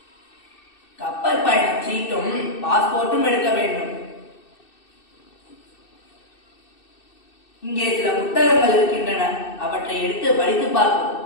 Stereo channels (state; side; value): late; right; 2.6 ms